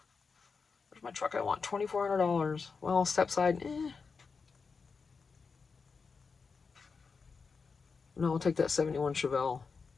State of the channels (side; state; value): right; quieter; 5.0 dB